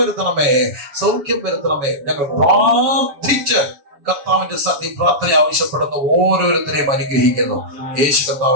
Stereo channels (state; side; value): late; left; 7.0 ms